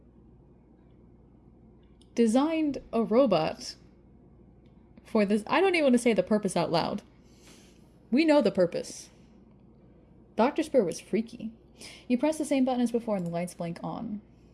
designed a robot for this. I don't even want to say the purpose out loud. We know the purpose. Dr. Spur was freaky. You press the same button as before and the lights blink on.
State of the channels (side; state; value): both; identical; correlation 1.00